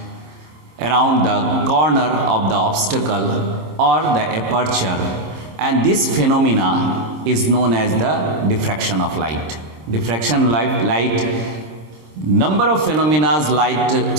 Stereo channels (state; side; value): late; left; 26 ms